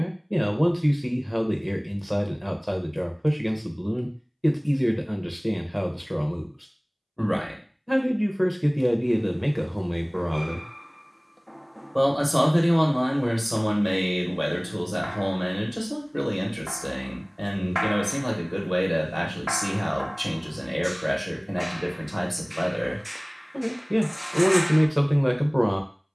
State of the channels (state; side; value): identical; both; correlation 1.00